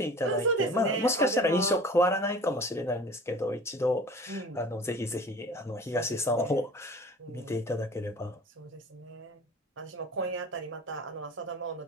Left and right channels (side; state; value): both; normal; correlation 0.42